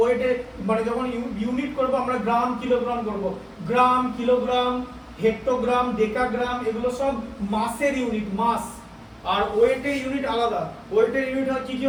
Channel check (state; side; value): identical; both; correlation 1.00